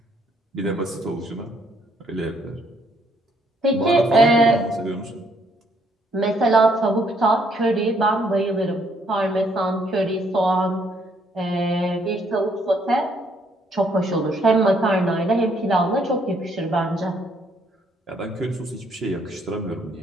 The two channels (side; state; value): both; normal; correlation 0.69